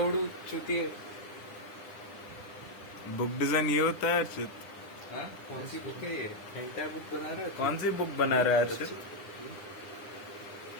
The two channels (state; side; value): late; right; 9.9 ms